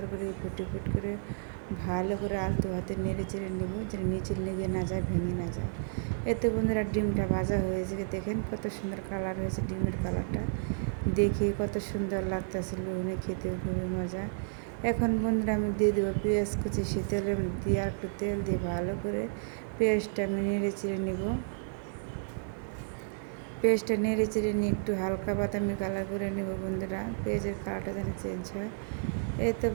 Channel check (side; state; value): left; silent; digital silence